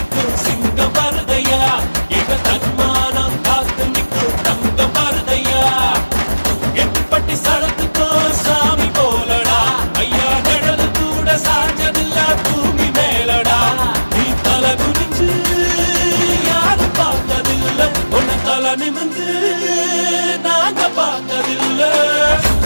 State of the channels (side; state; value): both; inverted; correlation -1.00